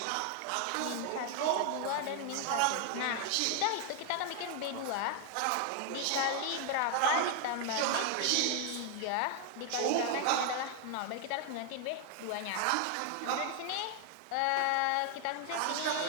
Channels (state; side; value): different; both; correlation 0.00